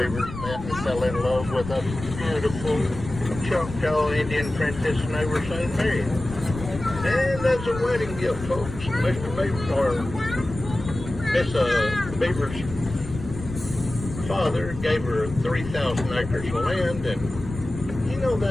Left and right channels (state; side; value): noise; left; rumble, 10 dB below the sound